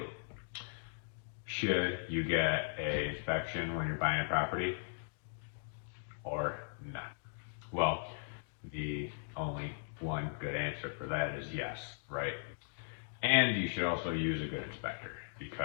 should you get a inspection when you're buying a property or not? Well, the only one good answer for that is yes, right? And you should also use a good inspector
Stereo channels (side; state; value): right; silent; digital silence